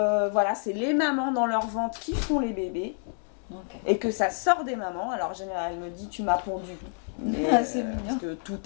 voilà, c'est les mamans dans leur ventre qui font les bébés. Et que ça sort des mamans. Alors en général, elle me dit tu m'as pondu. Parce que tout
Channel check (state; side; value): silent; right; 59 dB below the other